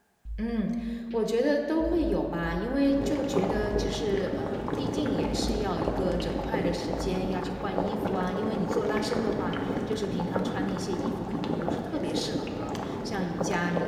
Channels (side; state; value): both; identical; correlation 1.00